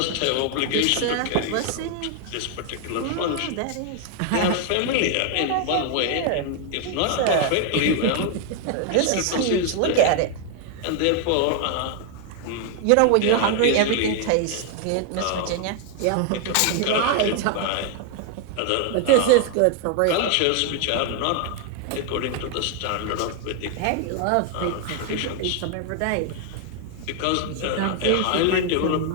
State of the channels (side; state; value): both; different; correlation 0.00